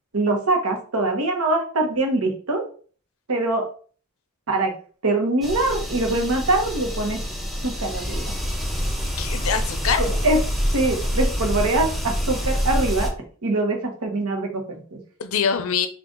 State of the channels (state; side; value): normal; both; correlation 0.28